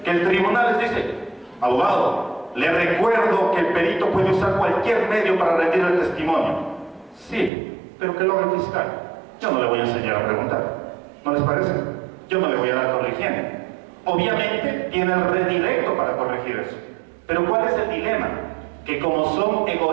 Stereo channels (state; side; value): drops out; left; at 7.5 s